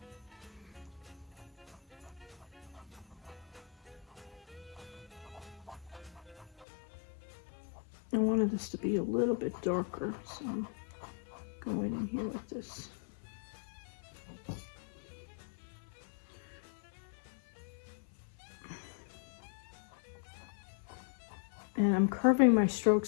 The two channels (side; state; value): right; drops out; at 6.7 s